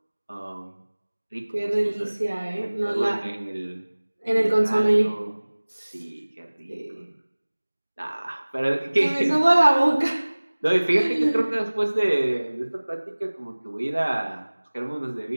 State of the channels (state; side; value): inverted; both; correlation -1.00